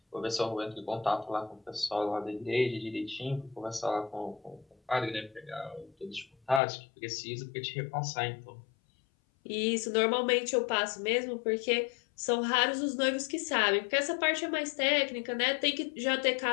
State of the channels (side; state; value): right; drops out; at 6.6 s